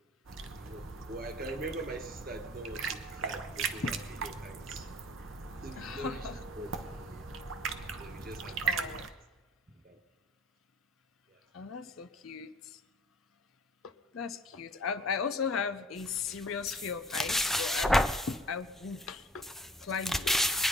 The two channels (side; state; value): both; normal; correlation 0.51